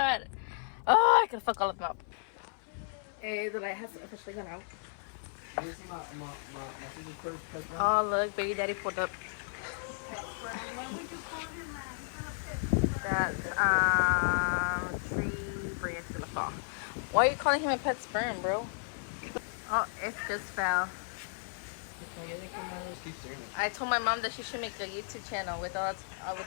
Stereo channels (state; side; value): silent; right; 55 dB below the other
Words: Oh, I could fuck all of them up. Hey, the light has officially gone out. Oh, look, baby daddy pulled up. That's tree branch in the fall. Why are you calling him a pet sperm, bro? Oh, it just fell. I told my mom that she should make a YouTube channel with